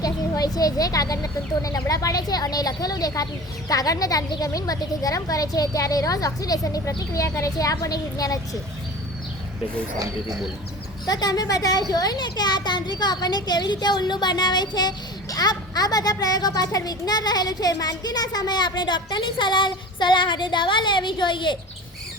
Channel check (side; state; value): both; normal; correlation 0.37